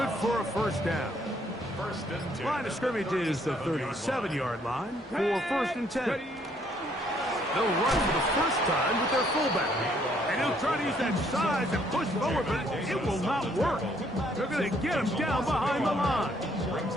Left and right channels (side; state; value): both; normal; correlation 0.67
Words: for a first down. Line of scrimmage is the 37-yard line for first and 10. They'll run for the first time with their fullback. And he'll try to use that size and push forward, but it will not work. They're going to get him down behind the line.